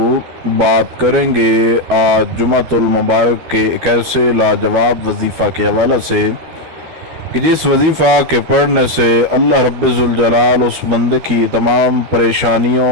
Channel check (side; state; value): left; late; 12 ms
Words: بات کریں گے آج جمعۃ المبارک کے ایک ایسے لاجواب وظیفہ کے حوالے سے کہ جس وظیفہ کے پڑھنے سے اللہ رب ذوالجلال اس بندے کی تمام پریشانیوں